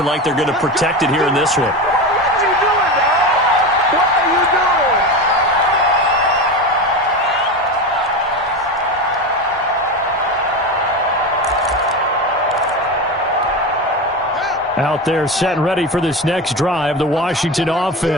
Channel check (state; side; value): normal; both; correlation 0.22